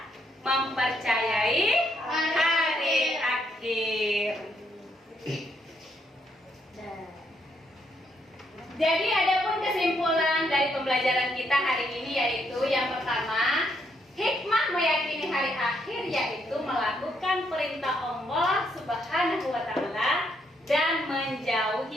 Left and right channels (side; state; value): both; normal; correlation 0.74